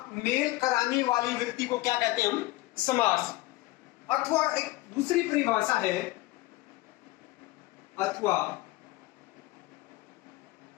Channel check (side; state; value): right; quieter; 19.2 dB